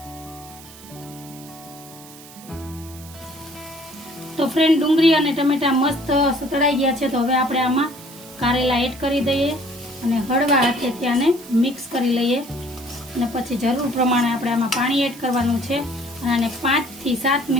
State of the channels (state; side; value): noise; right; hiss, 19 dB below the sound